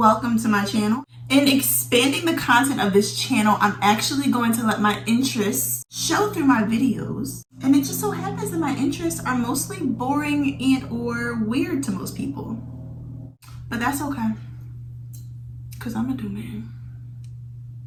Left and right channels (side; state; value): both; identical; correlation 1.00